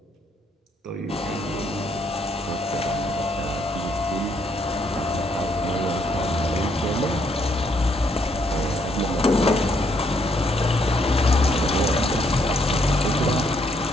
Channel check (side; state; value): both; normal; correlation 0.72